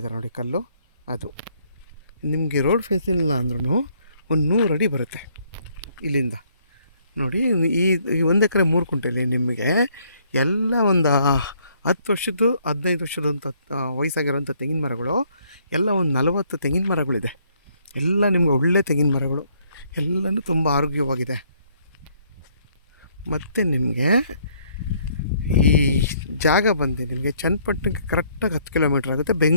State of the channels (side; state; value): both; inverted; correlation -0.66